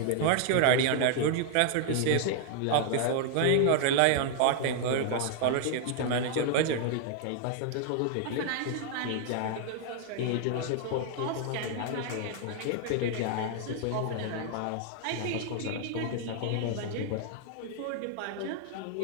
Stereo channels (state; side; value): different; both; correlation 0.00